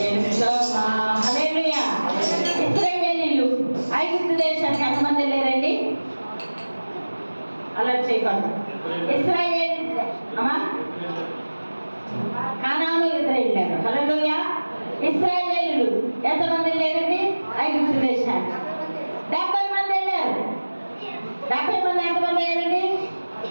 హల్లెలూయా. ఇశ్రాయేలీయులు ఐగుప్తు దేశానికి ఎంతమంది వెళ్ళారండి? అలర్ట్ చేయకండి. ఇశ్రాయేల్ అమ్మా కానాను ఎదురు వెళ్ళారు. హల్లెలూయా. ఇశ్రాయేలీయులు ఎంతమంది వెళ్ళారండి? ఐగుప్తు దేశానికి 70 మంది వెళ్ళారు. 70 మంది ఎంతమంది అయ్యారండి?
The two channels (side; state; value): both; inverted; correlation -1.00